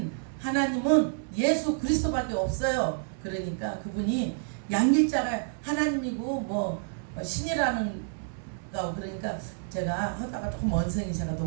하나님은 예수 그리스도밖에 없어요. 그러니까 그분이 양길자가 하나님이고 뭐 신이라는 거 그러니까 제가 하다가 조금 언성이 제가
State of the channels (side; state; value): left; silent; digital silence